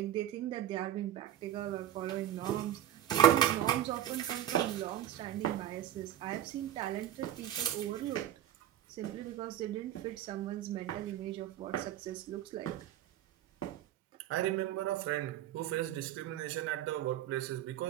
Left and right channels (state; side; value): quieter; left; 11.7 dB